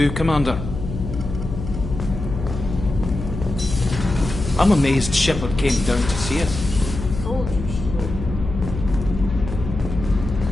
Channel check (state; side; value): noise; left; hum, 7 dB below the sound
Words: Commander. I'm amazed Shepard came down to see us.